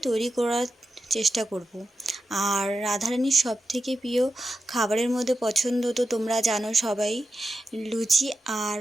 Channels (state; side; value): normal; both; correlation 0.89